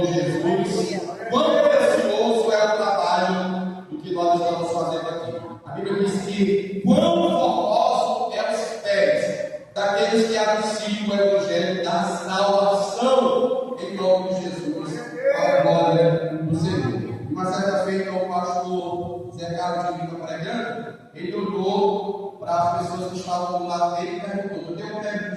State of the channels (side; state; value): both; identical; correlation 1.00